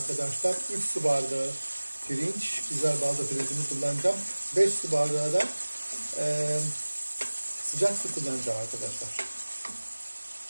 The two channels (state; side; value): inverted; both; correlation -1.00